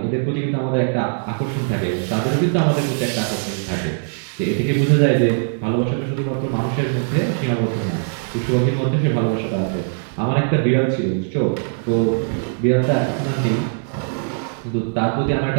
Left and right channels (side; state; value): left; silent; digital silence